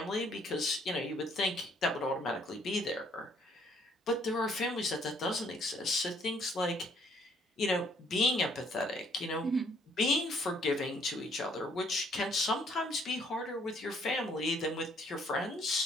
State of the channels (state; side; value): normal; both; correlation 0.65